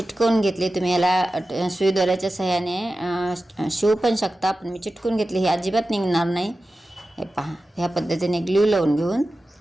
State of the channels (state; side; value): normal; both; correlation 0.94